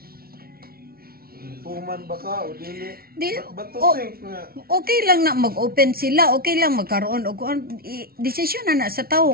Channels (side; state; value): left; late; 0.44 ms